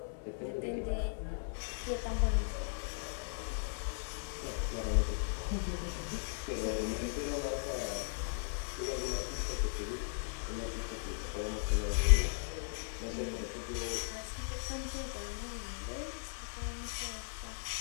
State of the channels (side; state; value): right; silent; 53 dB below the other